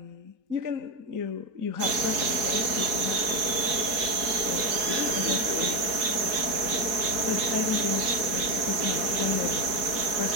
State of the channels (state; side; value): late; left; 4.1 ms